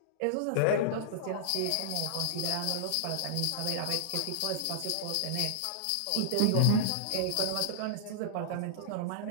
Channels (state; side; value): different; both; correlation -0.01